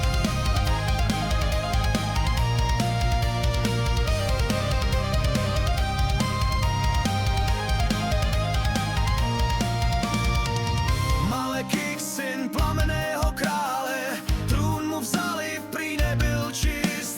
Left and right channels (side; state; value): both; identical; correlation 1.00